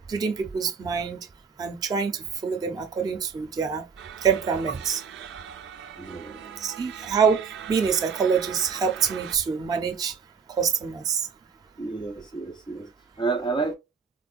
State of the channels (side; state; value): left; quieter; 5.9 dB